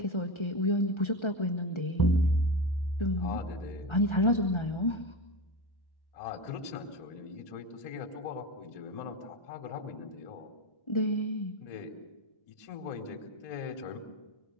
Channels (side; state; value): right; late; 1.3 ms